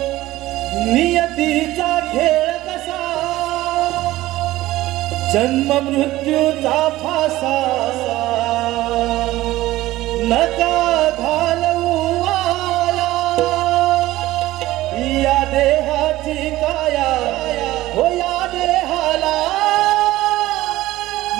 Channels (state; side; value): quieter; left; 16.6 dB